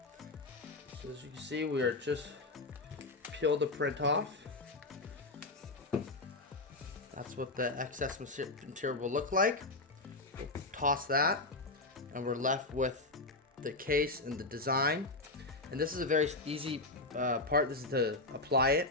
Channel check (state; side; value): quieter; right; 3.0 dB